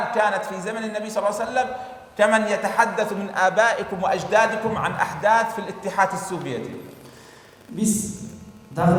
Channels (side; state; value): both; identical; correlation 1.00